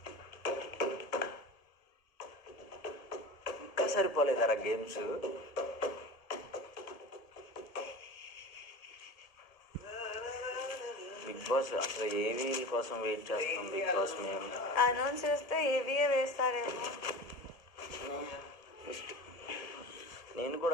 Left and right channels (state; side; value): late; right; 1.7 ms